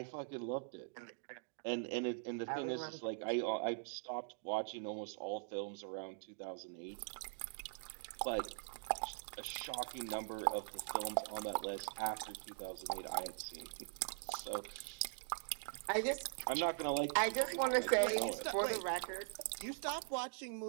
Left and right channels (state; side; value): silent; left; digital silence